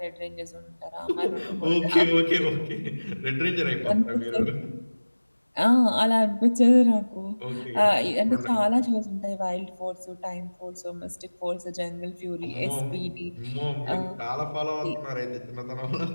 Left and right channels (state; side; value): inverted; both; correlation -1.00